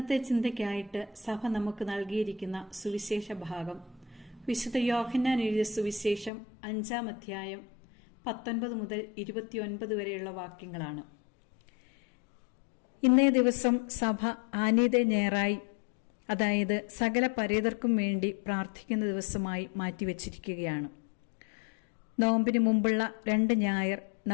ചിന്തയ്ക്കായിട്ട് സഭ നമുക്ക് നൽകിയിരിക്കുന്ന സുവിശേഷ ഭാഗം വിശുദ്ധ യോഹന്നാൻ എഴുതിയ സുവിശേഷം 5-ാം അധ്യായം 19 മുതൽ 29 വരെയുള്ള വാക്യങ്ങളാണ്. ഇന്നേ ദിവസം സഭ ആനീതെ ഞായറായി, അതായത് സകല പരേതർക്കും വേണ്ടി പ്രാർത്ഥിക്കുന്ന ദിവസമായി മാറ്റിവെച്ചിരിക്കുകയാണ്. നോമ്പിന് മുമ്പുള്ള 2 ഞായർ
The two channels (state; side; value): drops out; right; at 6.3 s